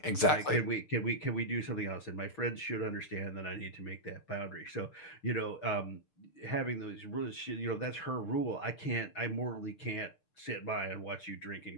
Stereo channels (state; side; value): late; right; 6.7 ms